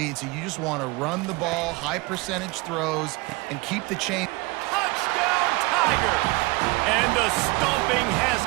so you just want to run the ball, high percentage throws, and keep the chain. Touchdown, Tigers! And the stomping has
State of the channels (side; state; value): left; quieter; 24.2 dB